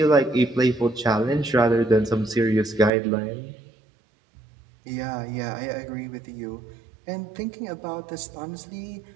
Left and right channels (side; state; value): left; drops out; at 2.9 s